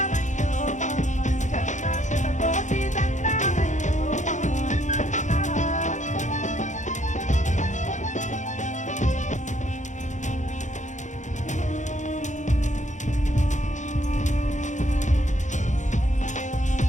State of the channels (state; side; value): late; right; 0.35 ms